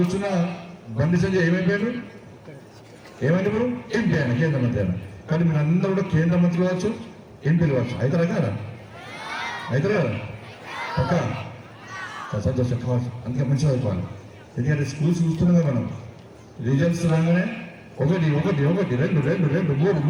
బండి సంజయ్ ఏమైపోయాడు, ఏమైంది ఇప్పుడు ఎంపీ ఆయన, కేంద్ర మంత్రి ఆయన. కానీ మీరు అందరూ కూడా కేంద్ర మంత్రులు కావచ్చు, ఎంపీలు కావచ్చు. అవుతారా కదా, అవుతారా పక్క సంతోషం కావచ్చు. అందుకే మంచిగా అయిపోవాలి. ఎందుకంటే స్కూల్స్ చూస్తున్నాం మనం, రిజల్ట్స్ రాగానే ఒకటి ఒకటి ఒకటి రెండు రెండు రెండు మూడు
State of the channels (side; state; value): both; identical; correlation 1.00